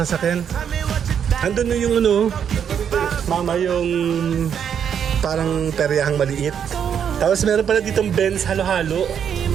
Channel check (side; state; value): left; quieter; 8.2 dB